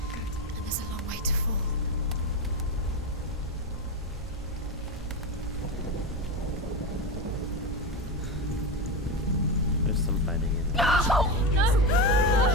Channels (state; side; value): normal; both; correlation 0.17